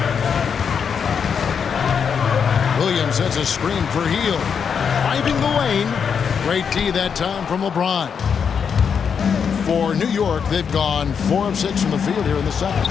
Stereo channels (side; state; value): right; quieter; 6.8 dB